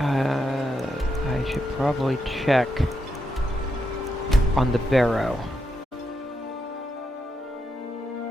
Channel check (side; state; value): both; normal; correlation 0.83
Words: should probably check on the barrow.